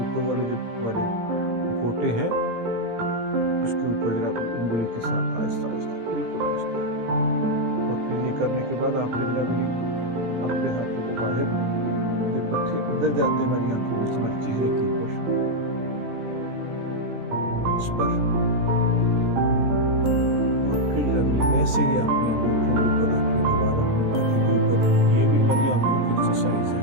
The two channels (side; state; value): left; late; 17 ms